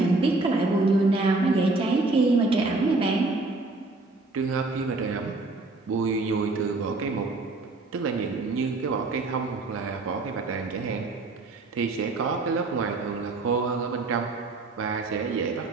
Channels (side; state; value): left; quieter; 3.3 dB